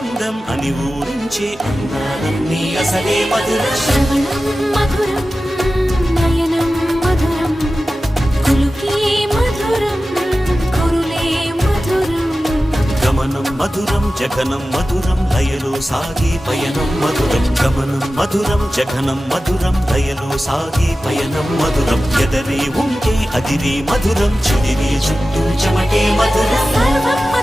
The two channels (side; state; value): both; normal; correlation 0.94